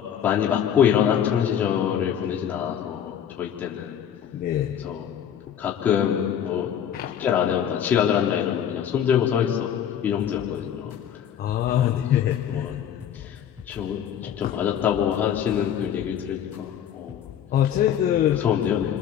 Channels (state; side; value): quieter; right; 9.2 dB